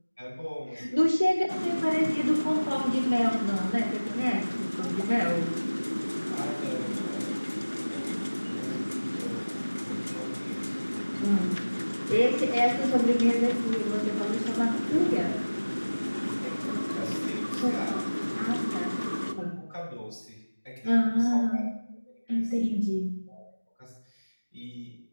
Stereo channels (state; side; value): inverted; both; correlation -1.00